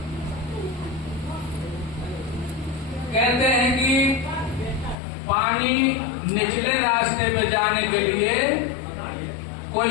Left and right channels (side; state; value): right; drops out; at 5.0 s